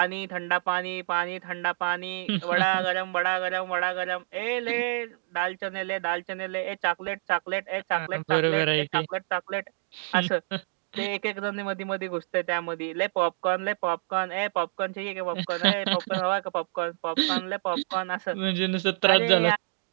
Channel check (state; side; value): silent; left; digital silence